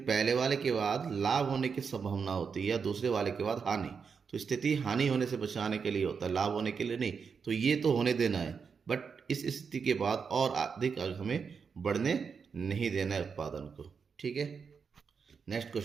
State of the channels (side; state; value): left; quieter; 5.9 dB